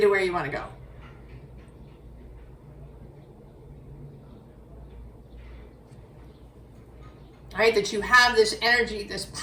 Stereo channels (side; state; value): both; identical; correlation 1.00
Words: where you want to go. Right? That you have this energy, this